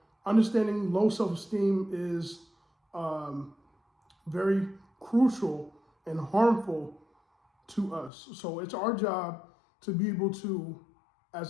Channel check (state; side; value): drops out; right; at 8.1 s